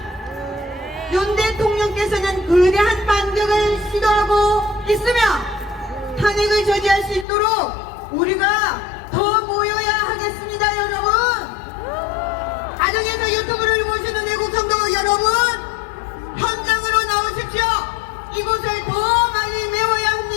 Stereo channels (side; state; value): right; drops out; at 7.2 s